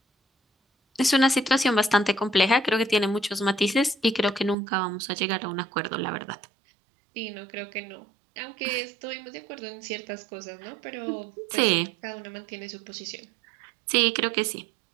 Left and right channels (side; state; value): left; drops out; at 4.5 s